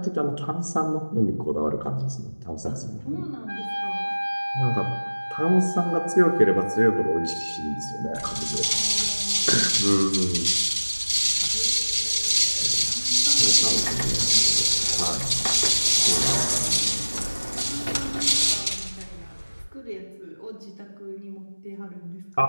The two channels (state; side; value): inverted; both; correlation -1.00